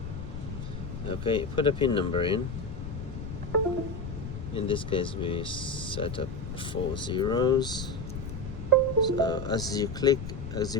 Okay, put a pin number in. In this case we set up 4 zeros. So as you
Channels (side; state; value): left; noise; rumble, 7 dB below the sound